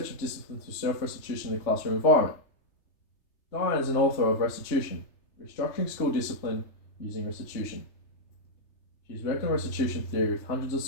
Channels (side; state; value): right; late; 3.3 ms